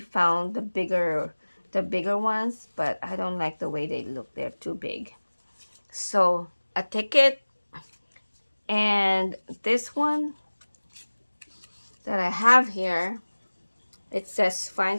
found the bigger ones, but I don't like the way they look. They're too big. So a ticket, and this one that I have here, it says fine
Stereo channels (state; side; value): inverted; both; correlation -1.00